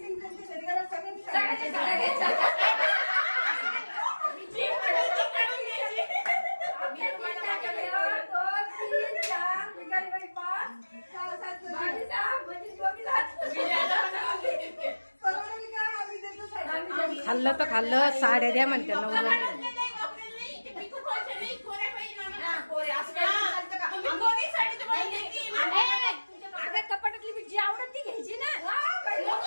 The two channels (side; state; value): both; inverted; correlation -1.00